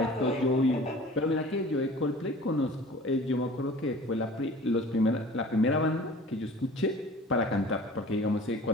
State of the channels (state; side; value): normal; both; correlation 0.44